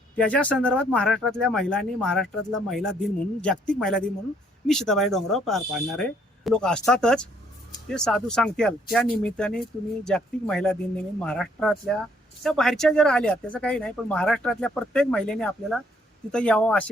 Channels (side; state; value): both; normal; correlation 0.66